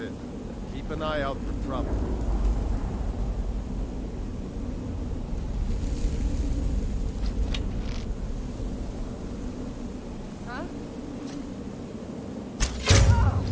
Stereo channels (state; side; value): identical; both; correlation 1.00